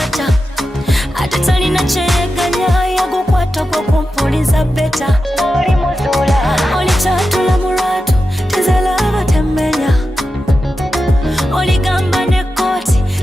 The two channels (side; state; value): both; normal; correlation 0.91